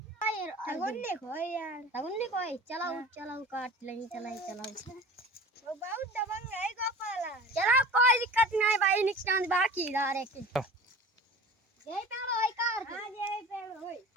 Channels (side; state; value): both; normal; correlation 0.39